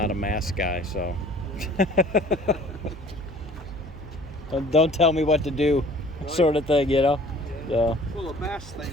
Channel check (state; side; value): noise; right; hum, 15 dB below the sound